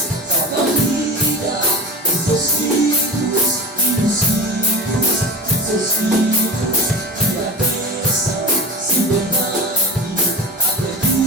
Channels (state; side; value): normal; both; correlation 0.33